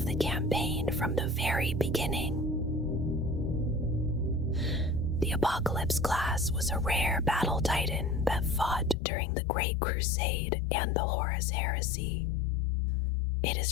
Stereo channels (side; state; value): right; drops out; at 9.0 s